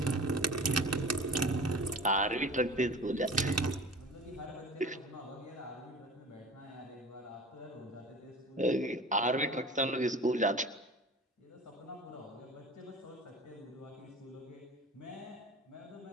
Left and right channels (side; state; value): both; normal; correlation 0.39